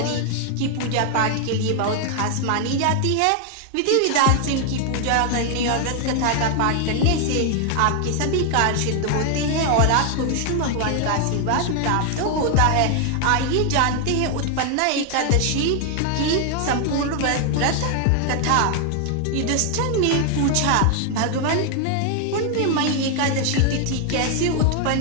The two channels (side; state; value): both; different; correlation 0.00